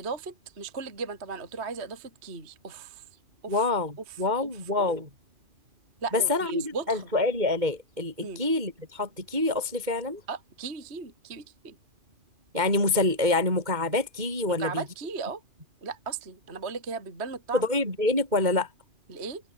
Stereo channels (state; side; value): late; left; 2.2 ms